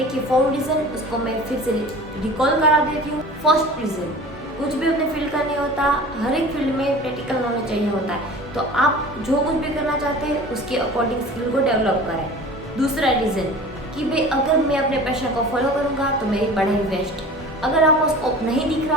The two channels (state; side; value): normal; both; correlation 0.40